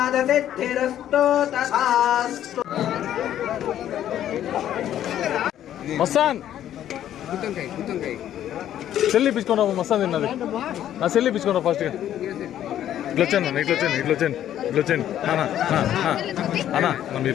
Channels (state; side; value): quieter; right; 11.3 dB